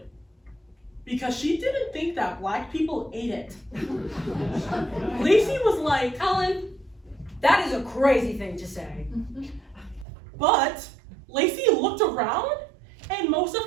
because she didn't think that black people ate it. Lacey was like, Ellen, that is a crazy thing to say. but Lacey looked around and most of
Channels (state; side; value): drops out; left; at 10.1 s